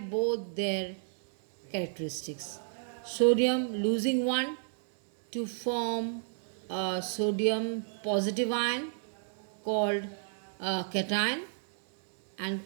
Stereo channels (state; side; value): silent; left; 57 dB below the other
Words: their characteristics. Sodium losing 1 to form a sodium positive ion called a cation, and